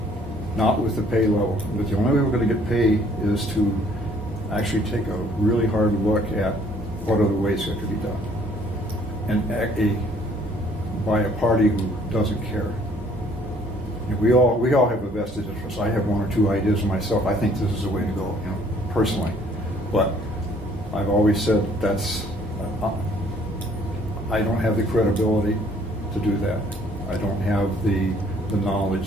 Not with the pay level. But the only way we're going to get pay is to actually take a really hard look at what other ways it could be done. And by a party who doesn't care. You know, we all have a vested interest. I have one or two ideas myself. I think this is the way to go, you know, personally. But I've always said that's, I don't have the credibility to do that. I don't have the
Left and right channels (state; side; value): normal; both; correlation 0.60